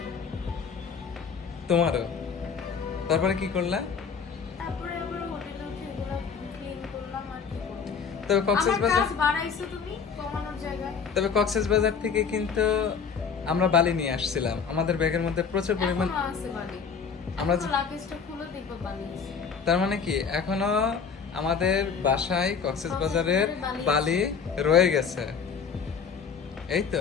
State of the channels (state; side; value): quieter; right; 6.1 dB